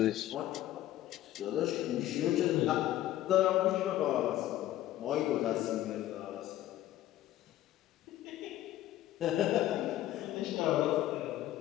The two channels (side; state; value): right; quieter; 13.9 dB